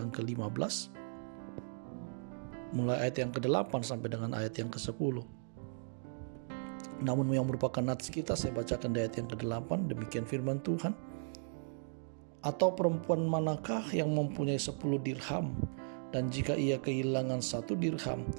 ke-15, mulai ayat yang ke-8 sampai dengan ayat yang ke-10. Namun yang merupakan nats kita, saya bacakan di ayat yang ke-8. Demikian firman Tuhan. Atau perempuan manakah yang mempunyai 10 dirham, dan jika ia kehilangan 1 dirham,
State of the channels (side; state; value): left; silent; digital silence